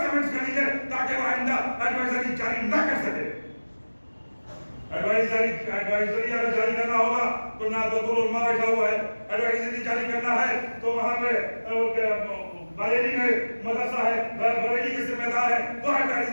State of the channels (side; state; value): both; inverted; correlation -1.00